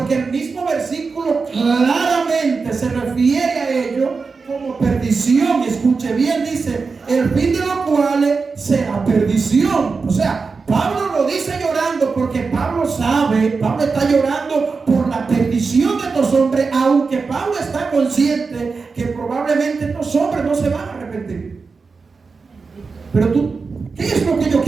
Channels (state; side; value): quieter; left; 4.6 dB